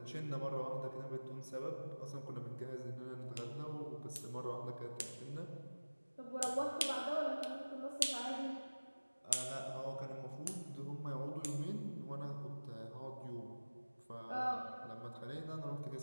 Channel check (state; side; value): inverted; both; correlation -1.00